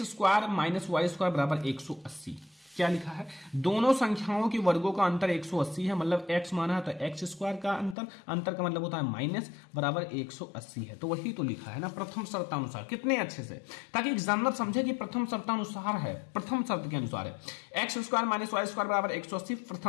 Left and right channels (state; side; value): drops out; right; at 8.0 s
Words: square minus Y square बराबर 180। क्या लिखा है, दोनों संख्याओं के वर्गों का अंतर 180 है, मतलब x माना है तो x स्क्वायर का अंतर का मतलब होता है माइनस बराबर 180 है। तो वही तो लिखा है ना प्रथम शर्तानुसार, कितने अच्छे से, ताकि एग्जामिनर समझे कि प्रथम शर्तानुसार है, प्रथम शर्त के अनुसार है। x square minus Y square बराबर 180